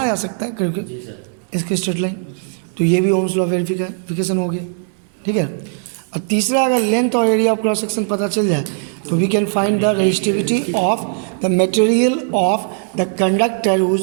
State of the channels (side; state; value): left; silent; 60 dB below the other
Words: जा सकता है करीब करीब इसकी स्ट्रेट लाइन। तो ये भी ओम्स लॉ वेरिफिकेशन हो गया, ठीक है। और तीसरा, अगर लेंथ और एरिया ऑफ क्रॉस सेक्शन पता चल जाए तो we can find the resistivity of the material of the conductor